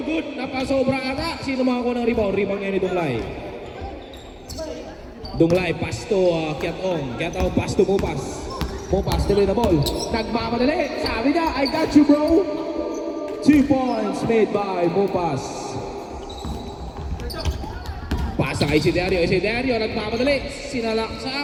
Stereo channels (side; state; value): both; identical; correlation 1.00